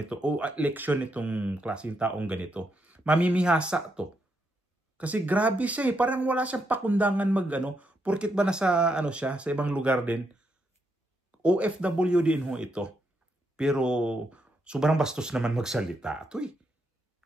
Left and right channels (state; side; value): normal; both; correlation 0.80